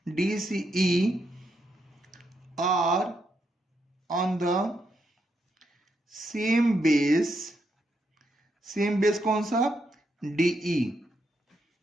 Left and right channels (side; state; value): both; normal; correlation 0.80